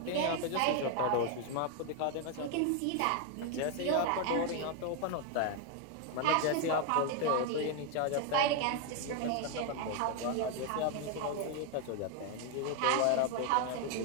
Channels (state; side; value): different; both; correlation 0.01